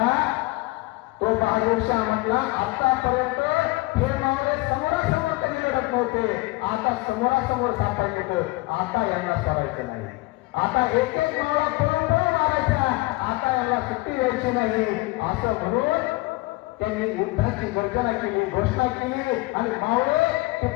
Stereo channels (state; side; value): quieter; right; 22.1 dB